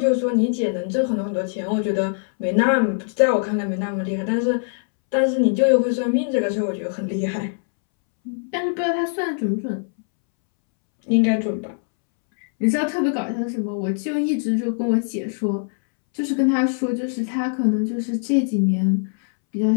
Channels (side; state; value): right; silent; 64 dB below the other